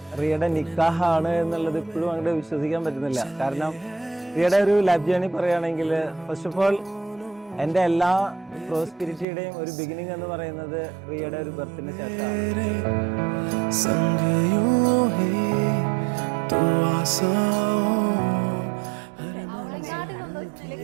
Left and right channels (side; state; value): left; drops out; at 9.2 s